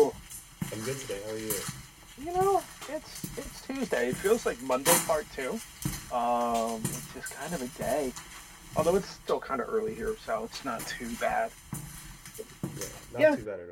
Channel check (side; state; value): both; identical; correlation 1.00